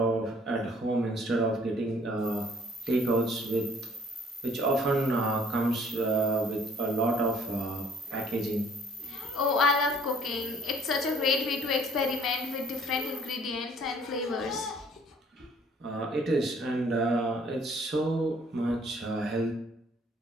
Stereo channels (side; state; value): both; normal; correlation 0.57